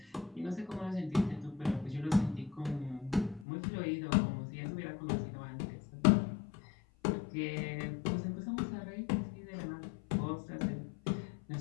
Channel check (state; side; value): drops out; right; at 3.5 s